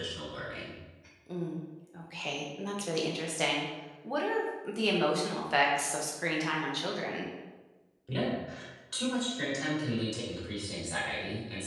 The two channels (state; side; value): identical; both; correlation 1.00